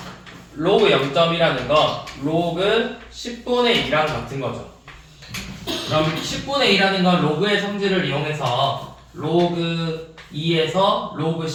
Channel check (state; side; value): identical; both; correlation 1.00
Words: 로그 0점이라는 건 로그 10분의 2랑 같은 거죠. 그럼 10분의 2라는 건 로그의 성질을 이용해서 로그 2에서 로그